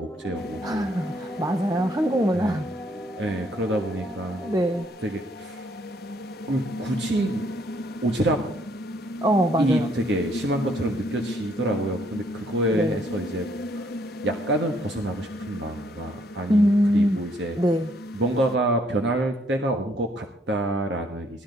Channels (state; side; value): normal; both; correlation 0.67